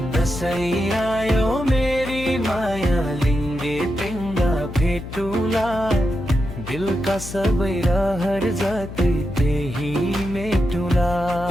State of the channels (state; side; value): noise; left; hum, 11 dB below the sound